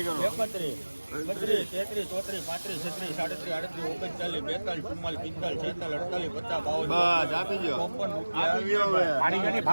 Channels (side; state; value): both; inverted; correlation -1.00